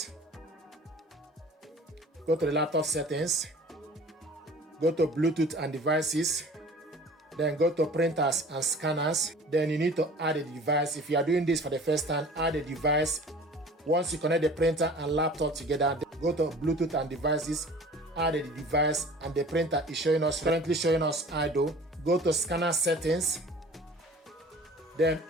go to the laptop settings, go to Bluetooth and devices, then go to printers and scanners. Then you need to add a device. If you are doing this for the first time, add a device. Once you connect the printer and laptop together, go to Bluetooth and devices, add a device, and the printer is currently showing us idle. Go to scanner settings, then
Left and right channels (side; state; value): both; normal; correlation 0.45